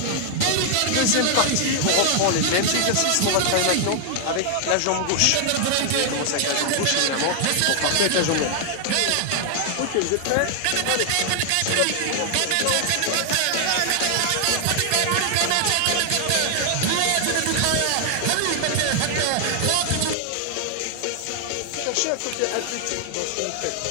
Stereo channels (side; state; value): both; different; correlation 0.00